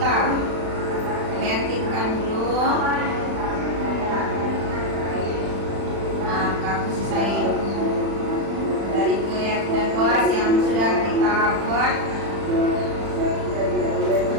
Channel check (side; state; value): left; late; 36 ms